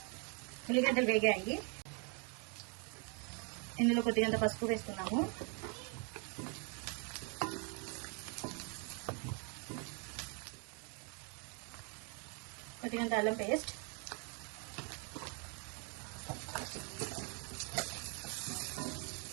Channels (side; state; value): left; quieter; 36.3 dB